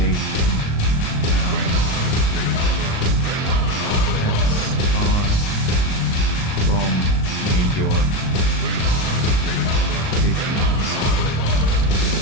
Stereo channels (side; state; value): right; late; 37 ms